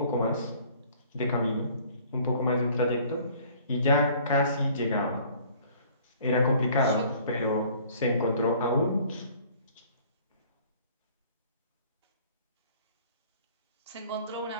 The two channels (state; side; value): inverted; both; correlation -0.54